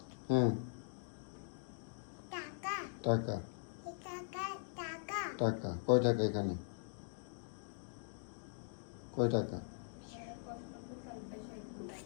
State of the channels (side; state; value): right; silent; digital silence